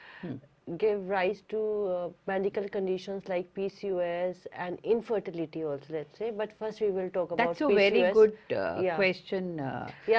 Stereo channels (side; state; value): both; identical; correlation 1.00